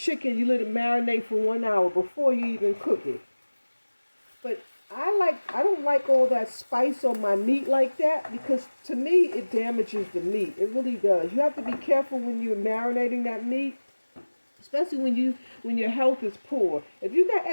You let it marinate for 1 hour before you even cook it. But I don't like all that spice on my meat like that, because to me it damages the meat. It really does. You have to be careful when you're marinating that meat, especially when your health is poor. If you got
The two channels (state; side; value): inverted; both; correlation -1.00